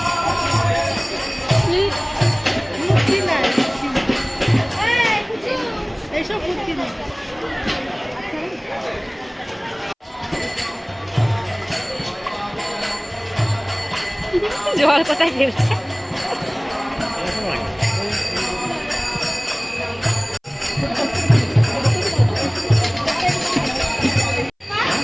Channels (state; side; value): identical; both; correlation 1.00